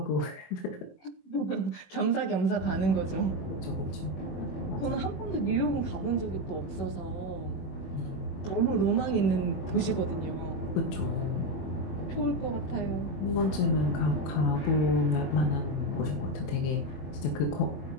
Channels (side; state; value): right; late; 21 ms